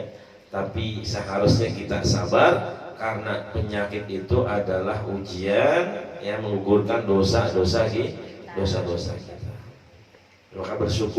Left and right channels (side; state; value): both; identical; correlation 1.00